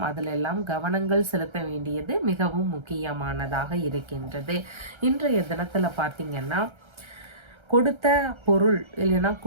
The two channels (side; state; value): left; late; 1.3 ms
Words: அதிலெல்லாம் கவனங்கள் செலுத்த வேண்டியது மிகவும் முக்கியமானதாக இருக்கின்றது. இன்றைய தினத்துல பார்த்தீங்கன்னா கொடுத்த பொருள் இல்லைன்னா